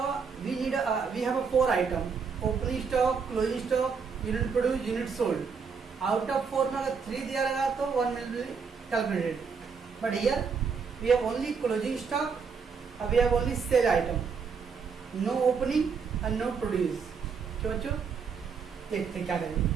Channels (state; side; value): quieter; left; 5.7 dB